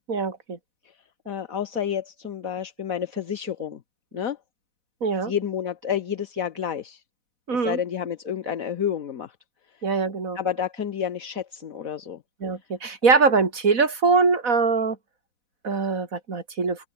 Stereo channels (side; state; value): left; late; 4.1 ms